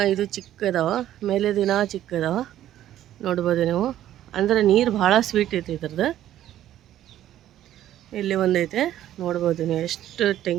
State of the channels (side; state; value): left; quieter; 12.4 dB